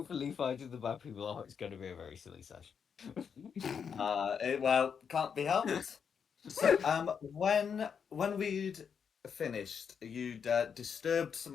fighting the bad people. Oh, it's going to be a very silly session. Well, can't be helped. So, when we'd finished, you'd disturbed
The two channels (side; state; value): right; quieter; 6.9 dB